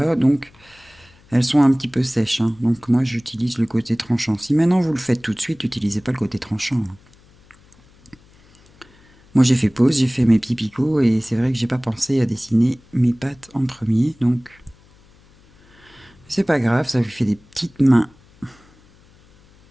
donc elles sont un petit peu sèches, hein. Donc moi j'utilise le côté tranchant. Si maintenant vous le faites tout de suite, n'utilisez pas le côté tranchant, hein. Moi j'ai fait pause, j'ai fait mes petits picots et c'est vrai que j'ai pas pensé à dessiner mes pattes en premier, donc c'est pas grave, ça lui fait des petites mains.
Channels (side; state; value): left; noise; hum, 29 dB below the sound